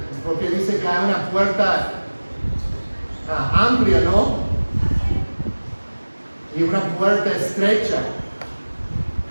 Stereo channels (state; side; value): inverted; both; correlation -1.00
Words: porque dice que hay una puerta amplia, ¿no? Y una puerta estrecha.